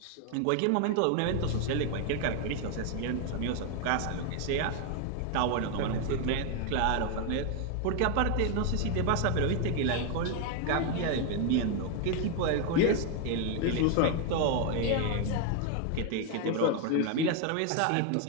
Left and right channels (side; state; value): both; different; correlation 0.01